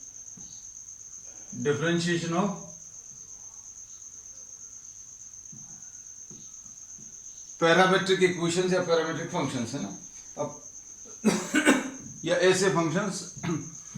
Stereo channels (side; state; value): both; identical; correlation 1.00